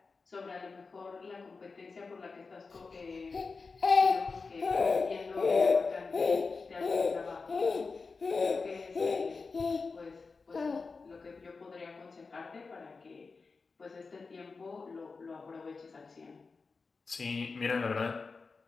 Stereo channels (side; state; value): right; quieter; 4.4 dB